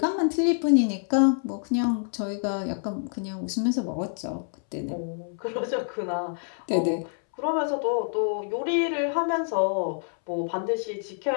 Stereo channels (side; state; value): right; silent; 60 dB below the other